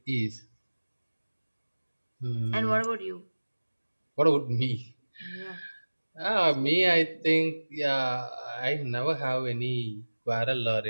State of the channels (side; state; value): both; inverted; correlation -1.00